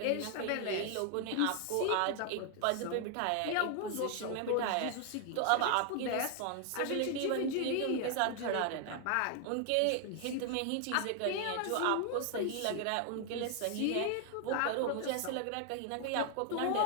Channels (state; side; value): different; both; correlation 0.00